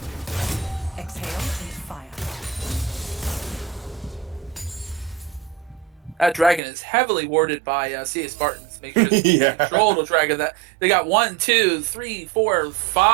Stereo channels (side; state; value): left; drops out; at 6.6 s